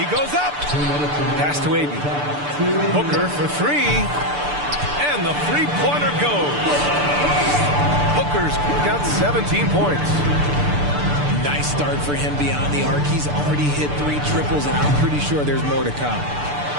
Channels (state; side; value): late; left; 6.8 ms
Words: goes up. Pass to Ayton. Booker for 3. And the three-pointer goes. Booker's got 17 points. Nice start for him beyond the arc. He's already hit 3 triples, and I'm pretty sure there's more to come.